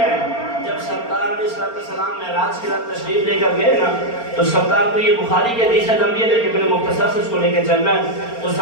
ہے۔ جب سرکار علیہ السلام معراج کی رات تشریف لے کر گئے نا، تو سرکار کو یہ بخاری کے حدیث لمبی ہے لیکن میں نے مختصر سے اس کو لے کے چلنا ہے۔ تو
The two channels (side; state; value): right; late; 4.3 ms